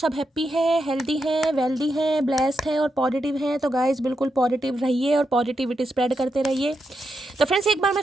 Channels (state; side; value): normal; both; correlation 0.85